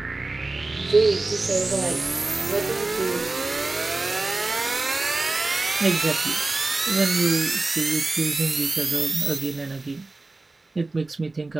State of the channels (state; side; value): quieter; left; 3.2 dB